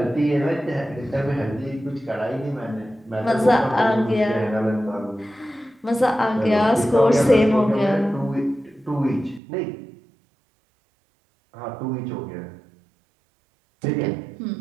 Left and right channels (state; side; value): drops out; left; at 9.4 s